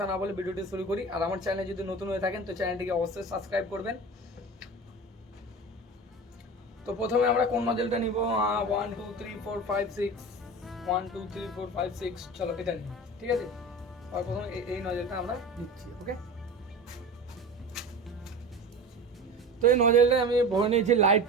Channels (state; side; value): normal; both; correlation 0.32